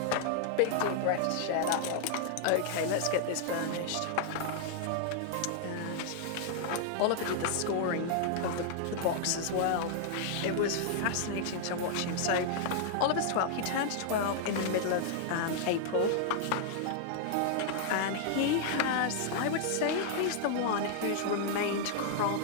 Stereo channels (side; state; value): both; different; correlation -0.01